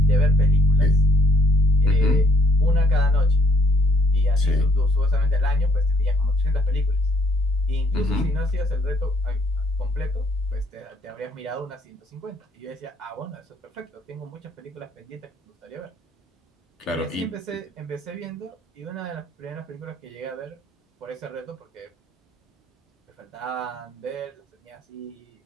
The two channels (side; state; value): both; normal; correlation 0.65